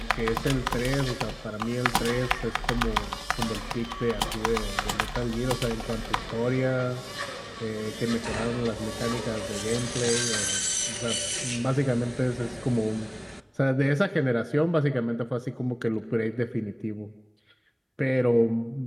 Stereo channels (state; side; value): identical; both; correlation 1.00